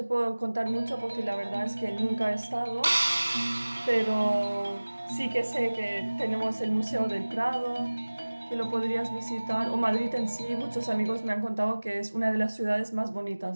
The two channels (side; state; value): both; inverted; correlation -1.00